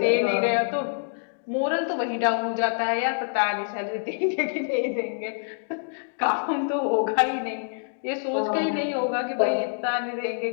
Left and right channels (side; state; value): right; silent; digital silence